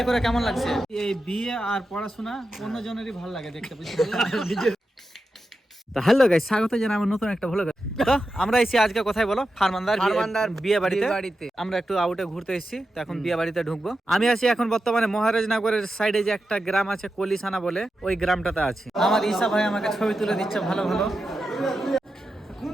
করে কেমন লাগছে? এই বিয়ে আর পড়াশোনা অন্য জনেরই ভালো লাগে দেখতে, বুঝতে তো হ্যালো গাইস, স্বাগত জানাই আমার নতুন একটা ভ্লগে। তো আমরা এসেছি আজকে কোথায় বলো? ফারমানদার বিয়ে বাড়িতে। আমরা একটু আউটে ঘুরতে এসেছি, তো এখন বিয়ে বাড়িতে ঢুকবো। আমি আছি এখন বর্তমানে মহারাজনগরের সাইডে যে একটা গ্রাম আছে কলিসানা বলে, ওই গ্রামটাতে আছি। আমার ঈশা ভাই আমাকে ছবি তুলে দিচ্ছে ভালো ভালো।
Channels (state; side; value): normal; both; correlation 0.90